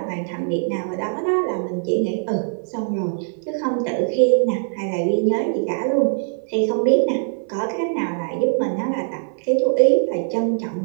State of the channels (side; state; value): left; silent; 64 dB below the other